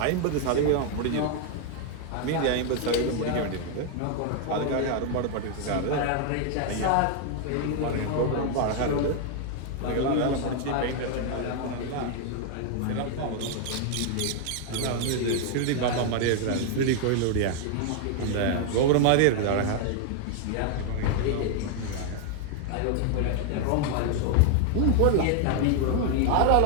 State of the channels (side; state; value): both; different; correlation 0.00